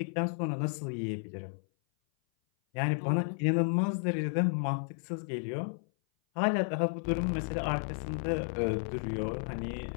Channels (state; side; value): silent; right; 56 dB below the other